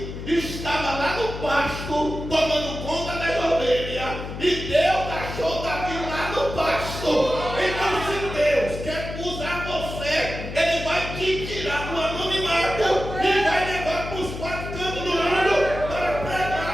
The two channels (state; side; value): noise; left; hum, 8 dB below the sound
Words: estava lá no pasto tomando conta das ovelhas e Deus achou Davi lá no pasto. Então se Deus quer usar você, ele vai te tirar do anonimato e vai levar para os 4 cantos do mundo para